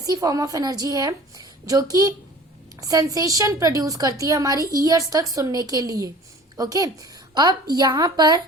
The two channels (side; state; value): both; normal; correlation 0.44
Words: form of energy है जो कि sensation produce करती है हमारी ईयर्स तक सुनने के लिए. ओके, अब यहाँ पर